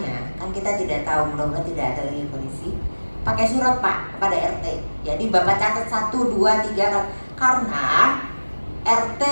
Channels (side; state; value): both; inverted; correlation -1.00